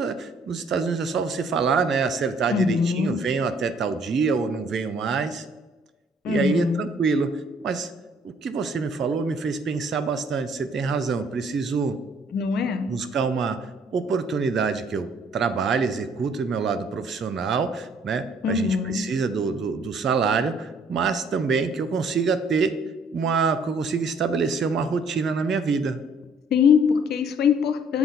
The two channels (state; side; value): normal; both; correlation 0.61